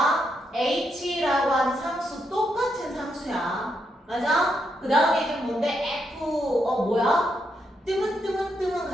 H라고 하는 상수 똑같은 상수야. 맞아? 그 다음에 이제 뭔데? 뜨문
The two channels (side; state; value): both; normal; correlation 0.80